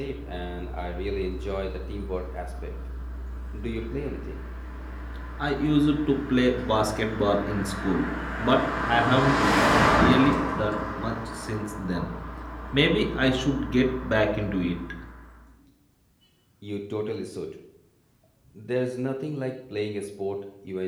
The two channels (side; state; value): both; identical; correlation 1.00